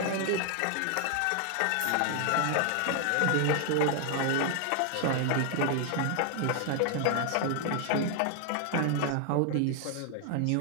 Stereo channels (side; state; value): both; different; correlation 0.00